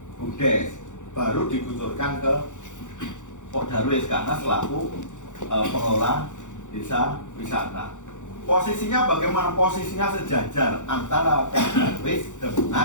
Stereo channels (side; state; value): right; late; 0.85 ms